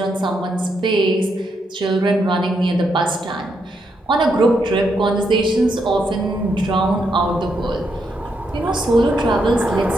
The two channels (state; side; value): normal; both; correlation 0.79